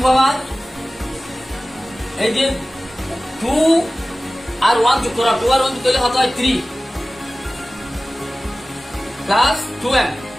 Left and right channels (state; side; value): normal; both; correlation 0.97